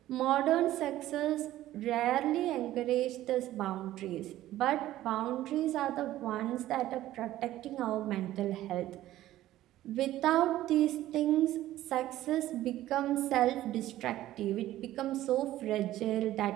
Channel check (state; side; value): quieter; left; 14.4 dB